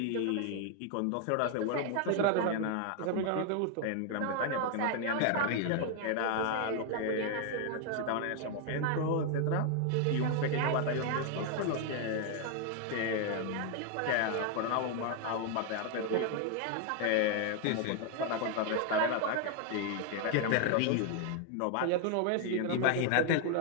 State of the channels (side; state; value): both; different; correlation 0.00